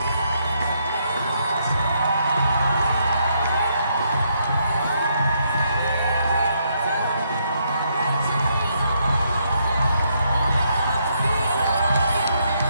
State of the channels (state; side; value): inverted; both; correlation -0.75